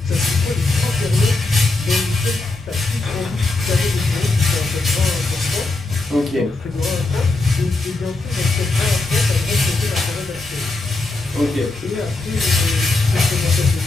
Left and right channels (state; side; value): quieter; right; 3.1 dB